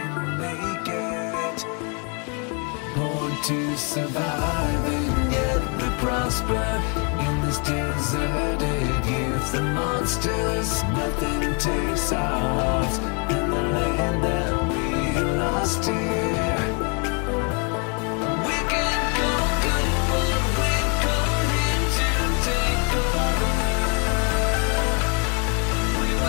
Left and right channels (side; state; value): right; quieter; 36.3 dB